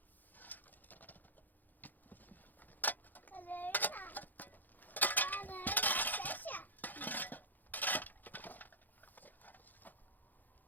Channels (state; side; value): late; right; 0.086 ms